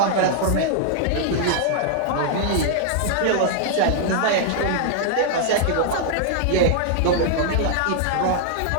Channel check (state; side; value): different; both; correlation -0.01